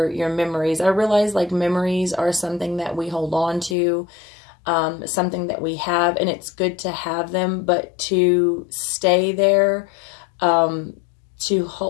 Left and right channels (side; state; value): right; drops out; at 3.8 s